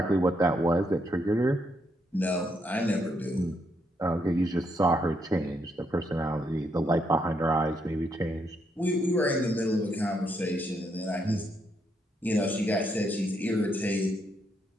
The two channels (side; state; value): both; normal; correlation 0.77